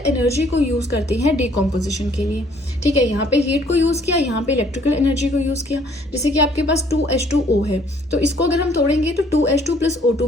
को यूज करते हैं डिकॉम्पोजिशन के लिए, ठीक है। यहाँ पे हीट को यूज किया, यहाँ पे इलेक्ट्रिकल एनर्जी को यूज किया। जैसे कि आपके पास 2H2O है, तो इसको अगर हम तोड़ेंगे तो 2H2 + O2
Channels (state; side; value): normal; both; correlation 0.61